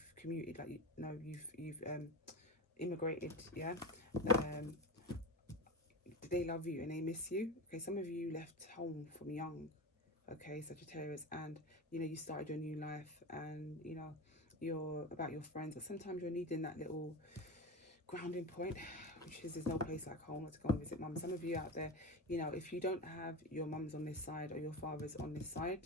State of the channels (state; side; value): normal; both; correlation 0.24